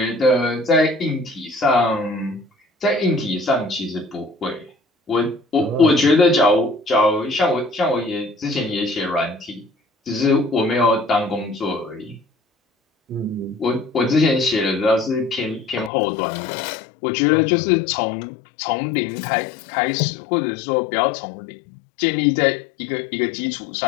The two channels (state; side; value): drops out; right; at 15.9 s